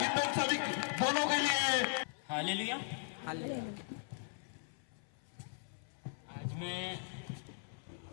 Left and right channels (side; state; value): right; silent; 52 dB below the other